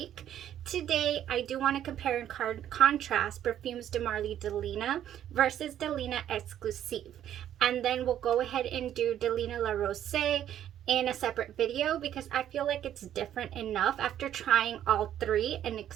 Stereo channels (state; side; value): quieter; left; 10.9 dB